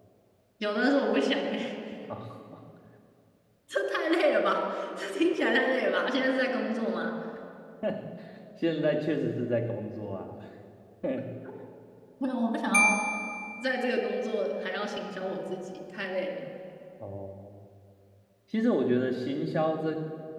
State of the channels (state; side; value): identical; both; correlation 1.00